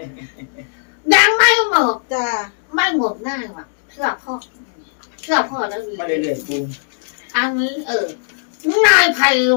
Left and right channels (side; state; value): right; silent; digital silence